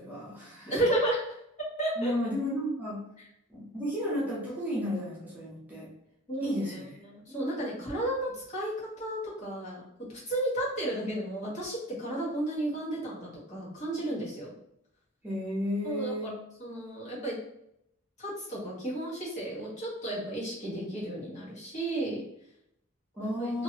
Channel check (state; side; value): normal; both; correlation 0.43